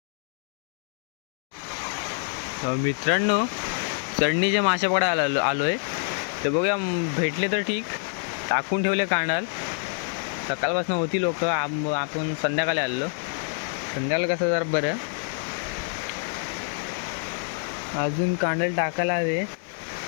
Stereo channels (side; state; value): right; silent; 61 dB below the other